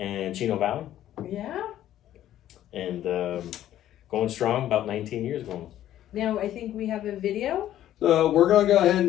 Chino Valley, Yeah. and going strong, about 19 years going. Now I think we have a video. So we're going to go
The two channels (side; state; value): right; quieter; 12.4 dB